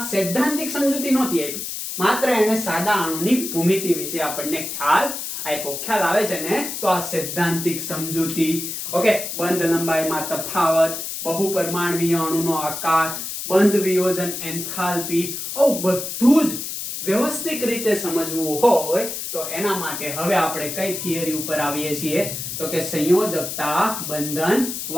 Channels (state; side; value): noise; left; hiss, 6 dB below the sound